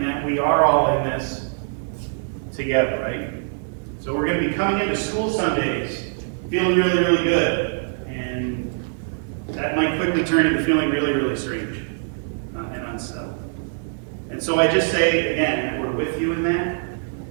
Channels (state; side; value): silent; left; digital silence